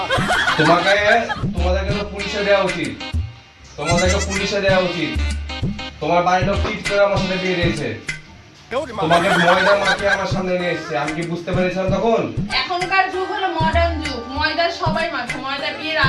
তোমাদেরকে তো পুলিশে দেওয়া উচিত, তোমাদেরকে পুলিশে দেওয়া উচিত। তোমার বাড়ির লোক টিট করে আমার সাথে বিয়ে দিয়েছে, তোমাকে ময়দা মাখিয়ে আমার সামনে নিয়ে এসেছে। আমি কি বুঝতে পেরেছিলাম তখন? এখনকার যুগ হলো মডার্ন যুগ, ময়দা সবাই মাখে, ময়দা বিয়ের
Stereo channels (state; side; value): identical; both; correlation 1.00